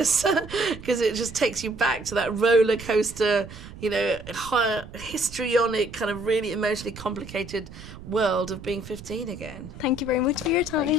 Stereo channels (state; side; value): noise; right; rumble, 15 dB below the sound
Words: because it just takes you back to that roller coaster, you know, histrionic, kind of really emotionally complicated world of being 15 again. Thank you very much for your time.